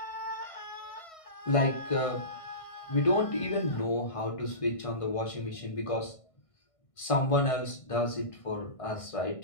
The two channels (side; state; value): right; late; 1.6 ms